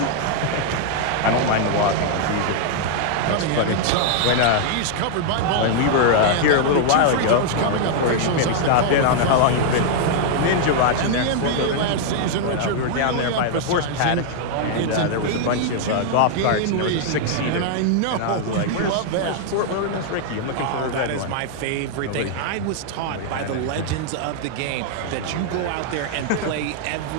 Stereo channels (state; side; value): different; both; correlation 0.00